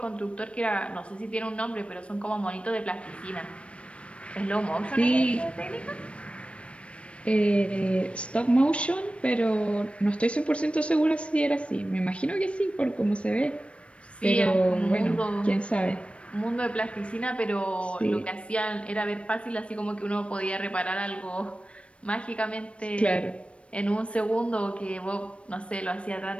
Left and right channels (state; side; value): late; right; 0.060 ms